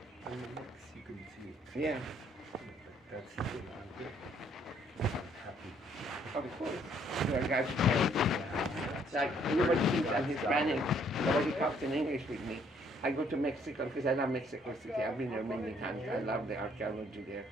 In the mix, you can see it. Yeah. That's I'm good. I'm happy. Of course. You are God's parents. Like nobody thinks I'm Hispanic. Nobody talks in English with me. I go to Mexico because I love Mexico City. I've been there many times. I love the archaeology there.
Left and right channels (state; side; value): normal; both; correlation 0.65